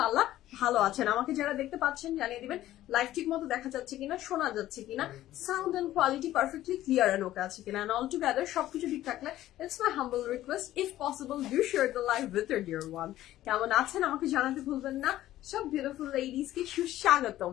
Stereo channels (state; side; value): quieter; right; 14.2 dB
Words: ভালো আছেন। আমাকে যারা দেখতে পাচ্ছেন জানিয়ে দিবেন লাইভ ঠিক মতো দেখা যাচ্ছে কিনা, শোনা যাচ্ছে কিনা, sound and quality perfectly clear and okay আছে কিনা, এন্ড অল টুগেদার সবকিছু ঠিক থাকলে it's my humble request, if possible do share the live with your dear one. কেমন আছেন আমাকে জানাতে ভুলবেন না। সব বিউটিফুল লেডিজ কে সুস্বাগতম।